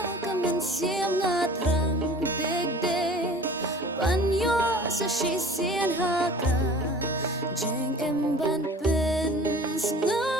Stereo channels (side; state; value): both; normal; correlation 0.44